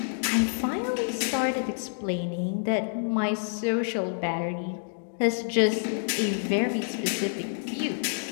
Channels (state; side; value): silent; right; digital silence